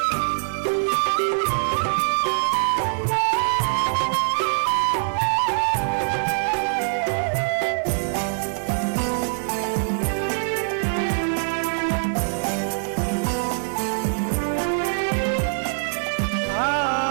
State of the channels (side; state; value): left; silent; 63 dB below the other